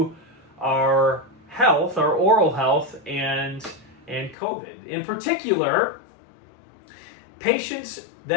our health, our oral health, and COVID. In particular, patients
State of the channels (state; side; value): drops out; right; at 4.4 s